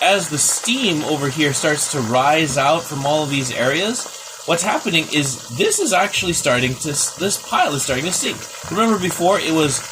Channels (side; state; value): both; identical; correlation 1.00